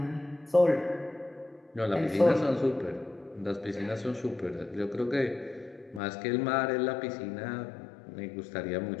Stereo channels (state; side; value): drops out; right; at 6.0 s